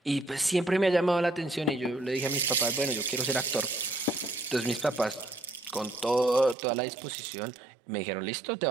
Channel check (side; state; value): left; drops out; at 6.6 s